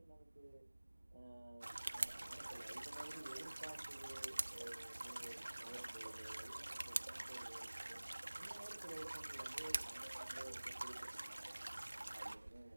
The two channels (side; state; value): both; inverted; correlation -1.00